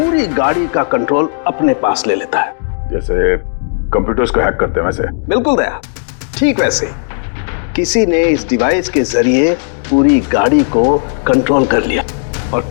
गाड़ी का कंट्रोल अपने पास ले लेता है। जैसे कंप्यूटर्स को हैक करते हैं वैसे? बिल्कुल दया, ठीक वैसे किसी ने इस डिवाइस के जरिए पूरी गाड़ी को कंट्रोल कर लिया और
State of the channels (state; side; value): silent; right; digital silence